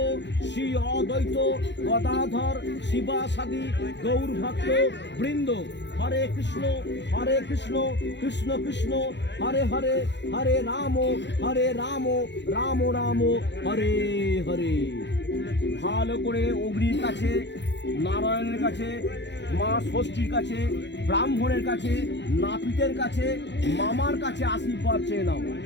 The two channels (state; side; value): late; right; 0.52 ms